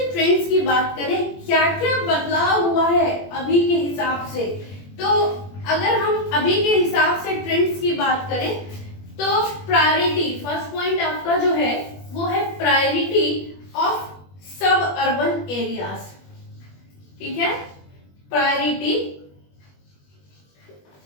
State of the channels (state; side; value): late; right; 21 ms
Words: ट्रेंड्स की बात करें, क्या क्या बदलाव हुआ है अभी के हिसाब से, तो अगर हम अभी के हिसाब से ट्रेंड्स की बात करें तो प्रायोरिटी, फर्स्ट पॉइंट आपका जो है वो है प्रायोरिटी ऑफ सब अर्बन एरियाज, ठीक है।